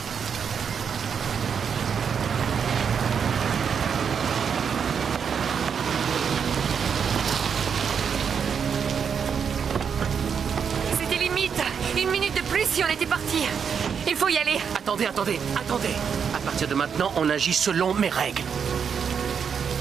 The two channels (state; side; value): quieter; left; 6.9 dB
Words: si on était parti. Il faut y aller. Attendez. À partir de maintenant, on agit selon mes règles.